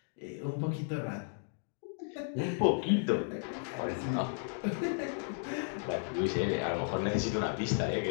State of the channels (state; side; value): silent; right; digital silence